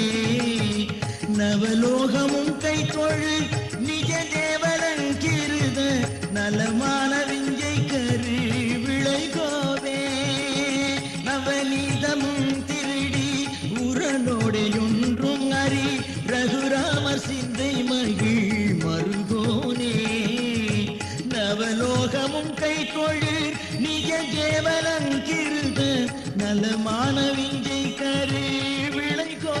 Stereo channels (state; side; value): identical; both; correlation 1.00